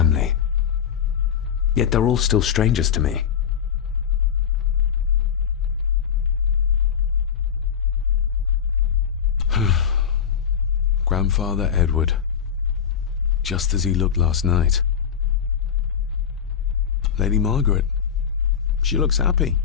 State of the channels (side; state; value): right; quieter; 7.9 dB